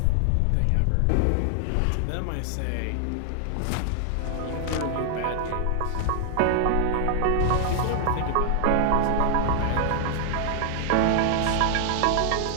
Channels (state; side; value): different; both; correlation 0.00